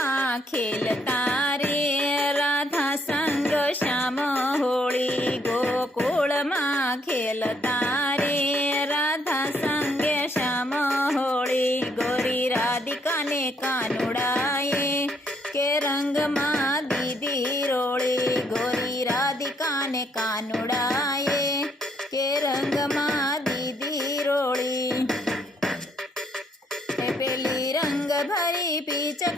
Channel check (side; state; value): both; normal; correlation 0.70